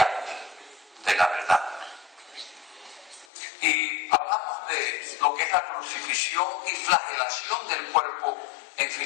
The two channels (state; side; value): drops out; right; at 3.2 s